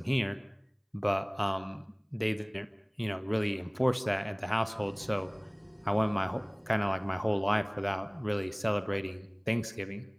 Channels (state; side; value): identical; both; correlation 1.00